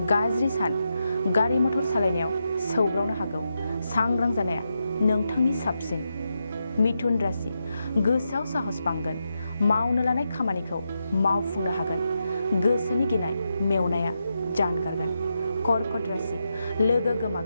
गाज्रि सान। गारि मटर सालायनायाव सौग्रावनो हागौ। सांग्रां जानाया नोंथांनि साबसिन। मिथुन राशि। गोसोआव साहस बांगोन। मावनो लानाय खामानिखौ मावफुंनो हागोन। गोसोनि गिनाय मेवनाया जानगारगोन। कर्कट राशि। लोगो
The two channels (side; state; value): both; inverted; correlation -0.86